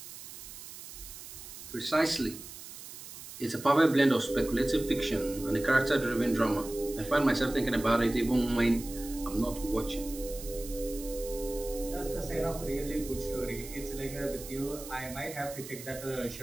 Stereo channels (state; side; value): noise; right; hiss, 13 dB below the sound